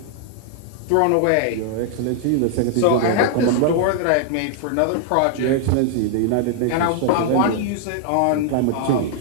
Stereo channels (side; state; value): both; different; correlation -0.01